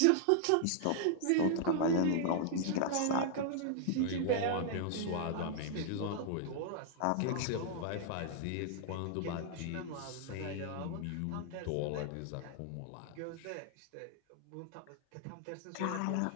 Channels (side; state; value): both; different; correlation -0.01